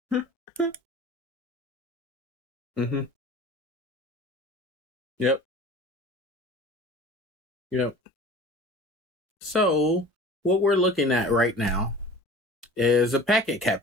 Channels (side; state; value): both; normal; correlation 0.41